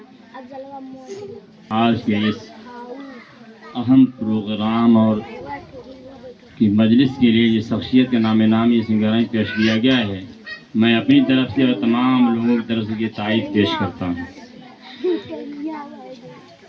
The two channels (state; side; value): identical; both; correlation 1.00